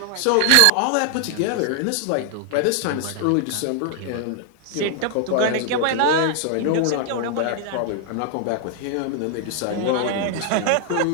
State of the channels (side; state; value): both; different; correlation -0.01